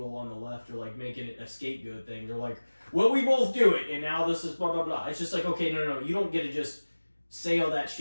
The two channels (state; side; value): inverted; both; correlation -1.00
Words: on the left are like making it a scapegoat thing. They're like, well, we both do it, and now this is blah, blah, blah. It's just like, okay, no. You don't get to just say all that